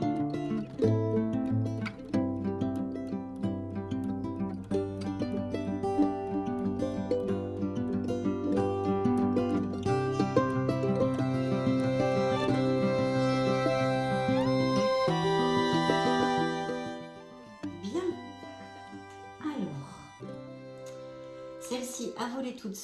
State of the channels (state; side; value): identical; both; correlation 1.00